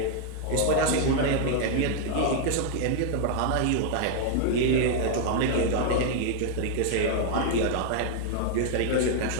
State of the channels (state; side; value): different; both; correlation 0.00